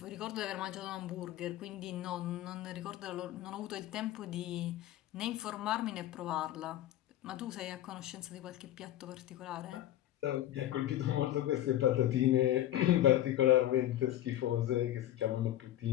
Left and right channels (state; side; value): quieter; right; 13.0 dB